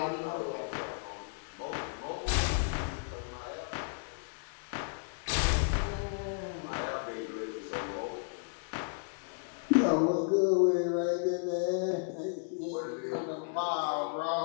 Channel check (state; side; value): silent; right; digital silence